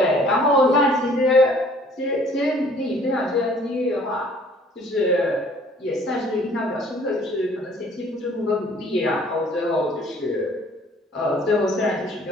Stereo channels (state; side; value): normal; both; correlation 0.56